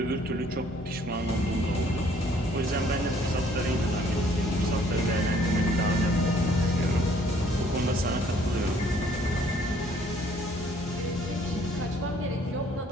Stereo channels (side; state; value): both; normal; correlation 0.61